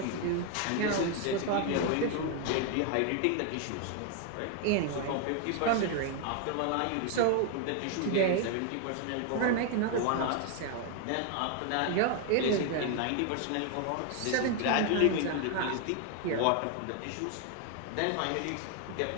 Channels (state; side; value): different; both; correlation 0.01